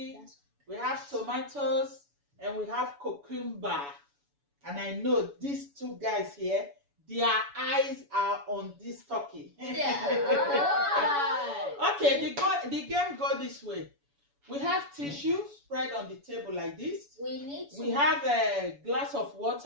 we have tomatoes, and we have cucumber. And I know these two guys here, their eyes are on this turkey. Okay, the game go this way. We have tissue spread on the table like this. We have a glass of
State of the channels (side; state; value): left; late; 7.0 ms